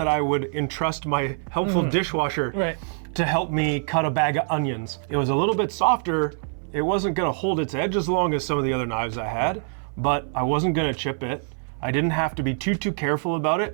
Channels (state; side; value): silent; left; 60 dB below the other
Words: I would entrust my helpful dishwasher to help me cut a bag of onions. It was a little bit softer. It wasn't gonna hold its edge as long as some of the other knives I had, but I wasn't gonna chip it. I didn't have to be too careful about